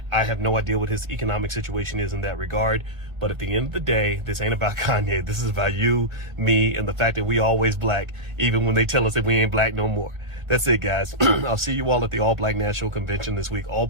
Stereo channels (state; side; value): late; left; 1.5 ms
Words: I have no idea what his economic situation is in that regard. But at the end of the day, this ain't about Kanye. This is about you, me, and the fact that we always black, even when they tell us that we ain't black no more. That's it, guys. I'll see you all at the All Black National Convention this week. All